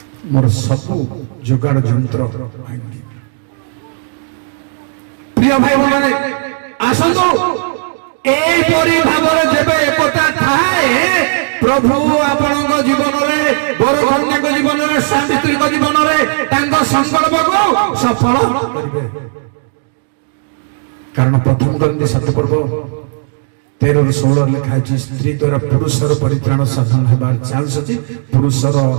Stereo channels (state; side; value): silent; left; 69 dB below the other